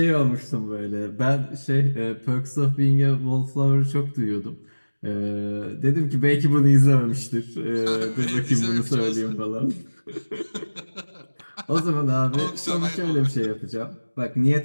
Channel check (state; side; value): inverted; both; correlation -1.00